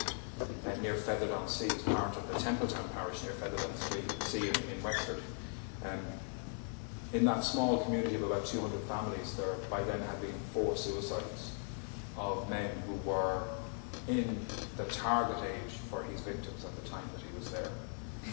near Featherdown-Sea, is part of the Templetown parish near Featherdown-Sea in Wexford. In that small community of about 200 families, there by then had been 4 suicides of men who were in the target age for his victims at the time that he was there.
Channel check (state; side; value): silent; right; 52 dB below the other